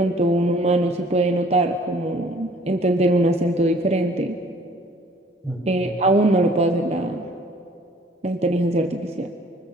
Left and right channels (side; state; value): both; normal; correlation 0.55